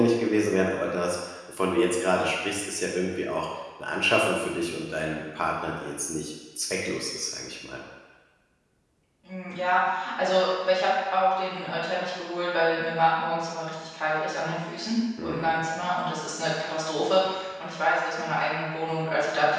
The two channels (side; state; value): both; identical; correlation 1.00